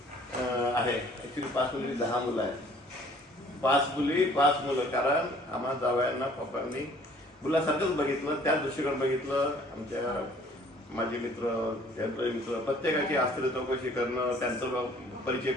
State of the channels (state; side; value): normal; both; correlation 0.56